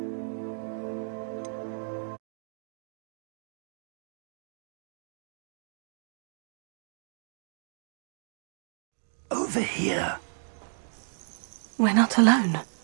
Over here. We're not alone.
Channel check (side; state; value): left; silent; digital silence